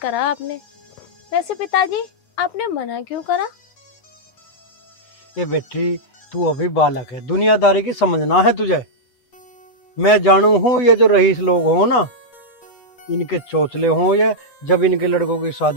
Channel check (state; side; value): late; right; 8.5 ms